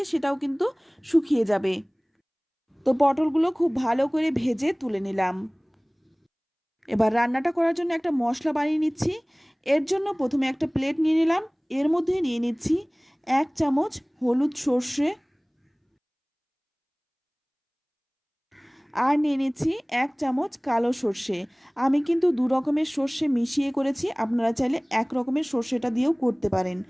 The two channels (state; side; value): identical; both; correlation 1.00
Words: সেটাও কিন্তু শুকিয়ে যাবে। তো পটলগুলো খুব ভালো করে ভেজে তুলে নিলাম। এবার রান্নাটা করার জন্য একটা মশলা বানিয়ে নিচ্ছি। এর জন্য প্রথমে একটা প্লেট নিয়ে নিলাম। এর মধ্যে নিয়ে নিচ্ছি 1 চামচ হলুদ সর্ষে, আর নিয়ে নিচ্ছি 1 চামচ কালো সর্ষে। আমি কিন্তু 2 রকমের সর্ষে মিশিয়ে করেছি, আপনারা চাইলে 1 রকমের সর্ষেটা দিয়েও করতে পারেন।